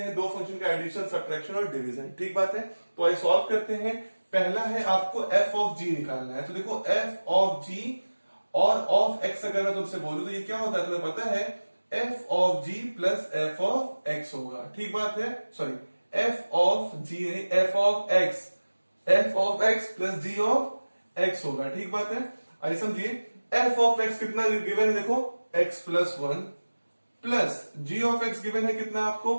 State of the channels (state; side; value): inverted; both; correlation -1.00